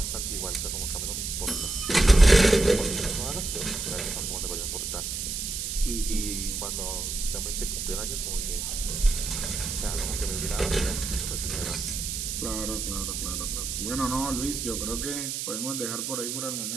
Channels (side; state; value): right; noise; hiss, 3 dB below the sound